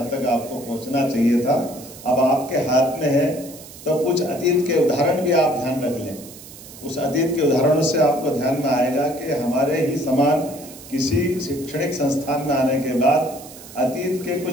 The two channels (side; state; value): right; noise; hiss, 17 dB below the sound